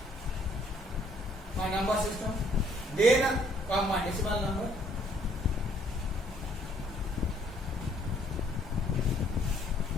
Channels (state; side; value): normal; both; correlation 0.63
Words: My number system. Then come my decimal number.